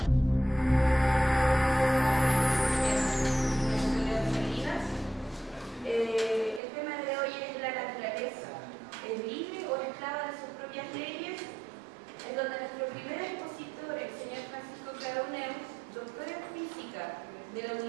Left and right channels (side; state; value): left; drops out; at 6.6 s